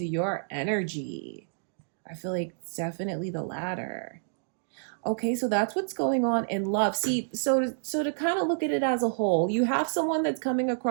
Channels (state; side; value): silent; left; digital silence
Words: your energy. I feel like it's definitely the latter. Okay, so that's what's going on in love. See, so to kind of look at it as a whole, you have someone that's coming